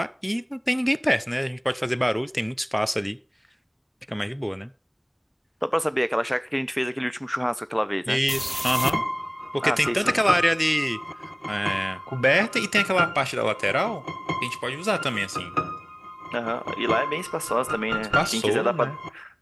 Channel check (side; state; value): both; identical; correlation 1.00